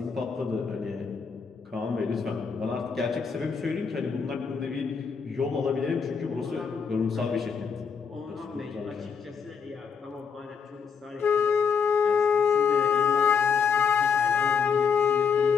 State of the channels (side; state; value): right; quieter; 6.3 dB